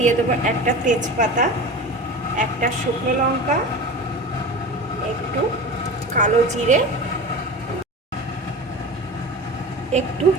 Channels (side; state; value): both; normal; correlation 0.31